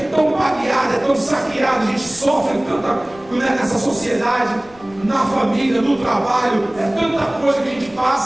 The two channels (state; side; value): noise; left; rumble, 25 dB below the sound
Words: baleado, é tão saqueado, a gente sofre tanta nessa sociedade, na família, no trabalho, é tanta coisa que a gente